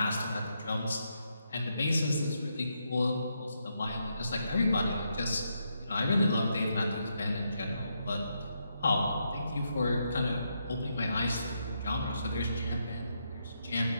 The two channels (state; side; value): inverted; both; correlation -0.80